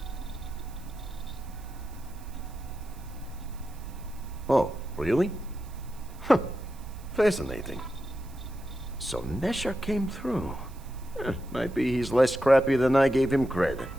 Oh, really? Huh. Fascinating. So Nesher came through. Might be he's less crappy than I gave him credit.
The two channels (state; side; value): noise; right; hiss, 24 dB below the sound